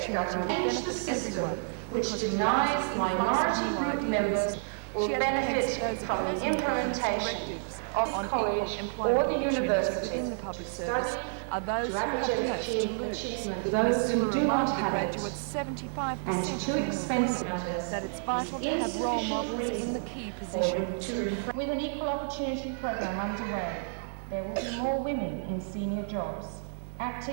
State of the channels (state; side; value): silent; left; 58 dB below the other